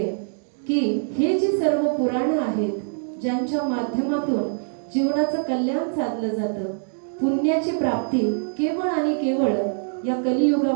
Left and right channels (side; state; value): left; silent; digital silence